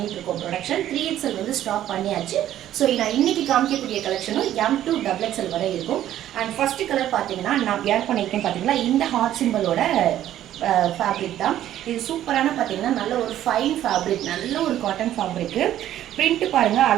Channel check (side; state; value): left; quieter; 12.2 dB